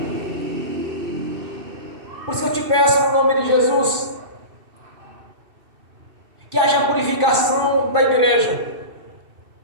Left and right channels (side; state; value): left; late; 2.7 ms